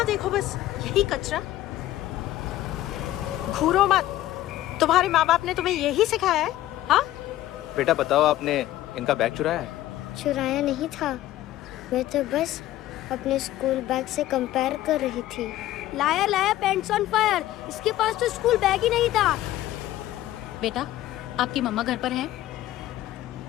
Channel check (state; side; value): quieter; right; 14.5 dB